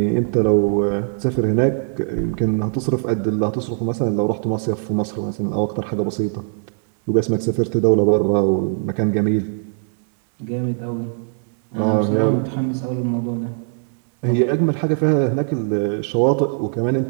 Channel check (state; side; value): silent; left; digital silence